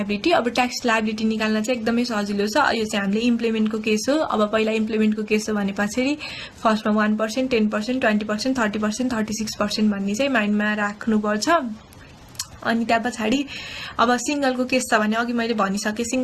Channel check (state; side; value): identical; both; correlation 1.00